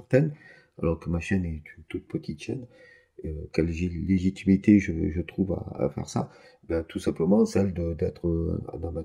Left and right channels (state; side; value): identical; both; correlation 1.00